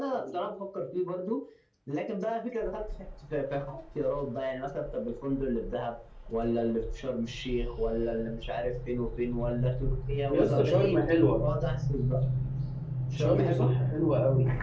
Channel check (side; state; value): both; identical; correlation 1.00